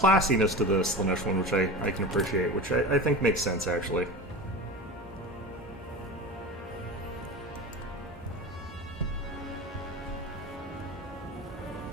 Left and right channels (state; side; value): normal; both; correlation 0.29